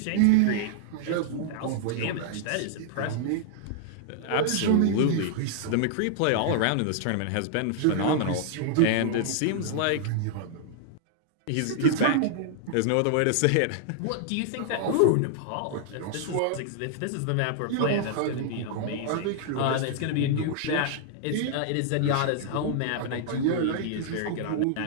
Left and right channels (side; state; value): both; different; correlation -0.01